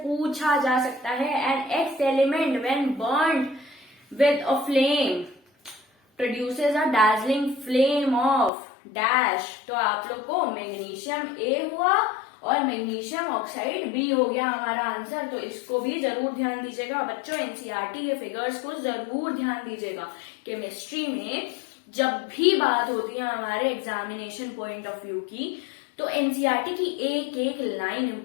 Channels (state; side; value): drops out; right; at 8.5 s